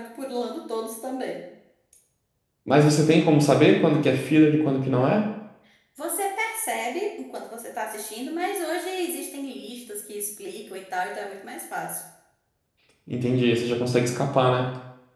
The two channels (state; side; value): identical; both; correlation 1.00